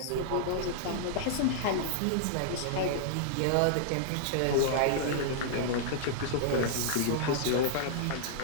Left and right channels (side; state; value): both; different; correlation -0.01